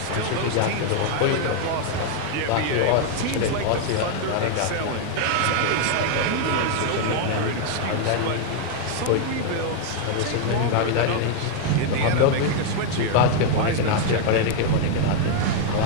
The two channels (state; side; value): different; both; correlation 0.00